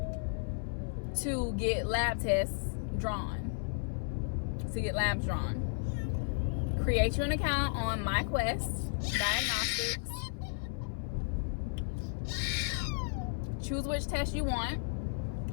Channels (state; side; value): silent; right; 55 dB below the other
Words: to get lab tests drawn, to get labs drawn. Create you an account on MyQuest Diagnostics. Choose which test you want,